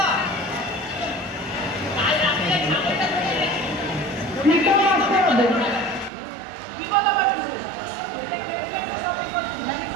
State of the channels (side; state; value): left; drops out; at 6.1 s